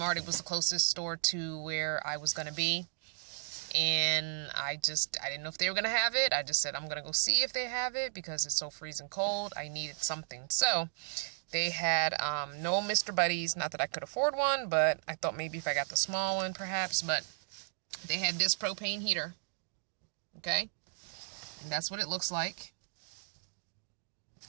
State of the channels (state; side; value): silent; left; digital silence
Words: It was the closest store to where I was going to be. And I didn't know if they were going to have it. I just said, I'm going to go see if they have it because it's so freezing cold. I needed something. So they had no Mr. Buddies. Not that I could afford one, but I thought maybe if I got the small one, perhaps. But they had this propane heater. Okay? And that's what it looks like.